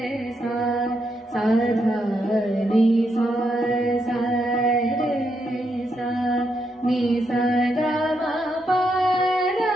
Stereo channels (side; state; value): both; normal; correlation 0.80